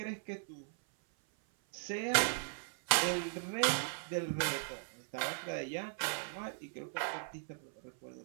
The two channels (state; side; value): silent; left; 52 dB below the other